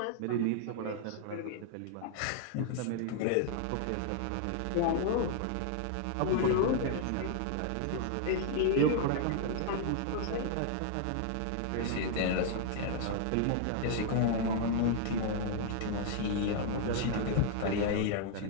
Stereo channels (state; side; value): different; both; correlation 0.00